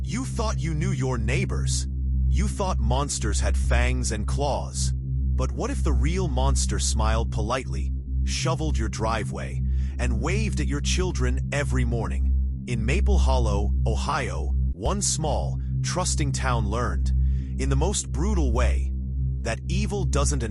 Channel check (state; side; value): identical; both; correlation 1.00